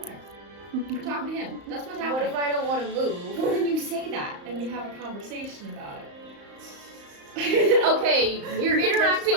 We're talking to him. That's what's What happening. if I don't want to move? Well, then you say that, and we have a conversation about it. Okay, you're Just interacting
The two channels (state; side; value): late; left; 35 ms